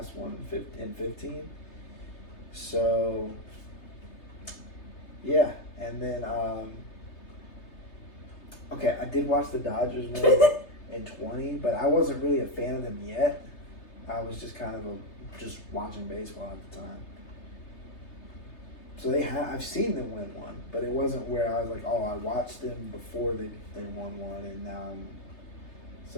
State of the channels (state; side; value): late; right; 3.3 ms